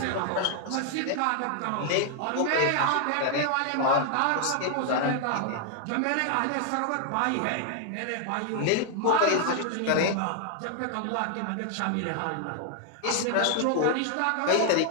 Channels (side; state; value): both; different; correlation 0.00